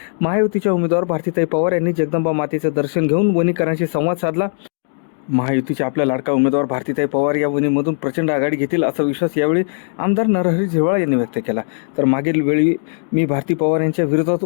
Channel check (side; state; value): right; silent; digital silence